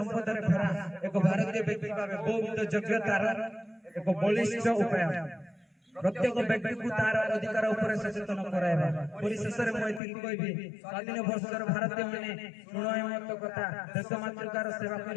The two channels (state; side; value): drops out; right; at 10.0 s